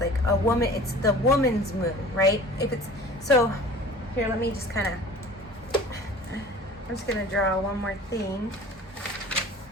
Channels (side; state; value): both; normal; correlation 0.44